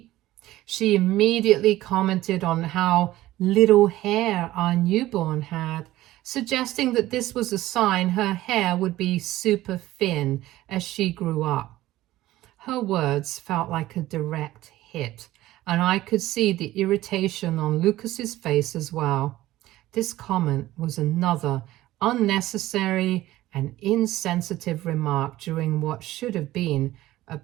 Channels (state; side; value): quieter; left; 15.9 dB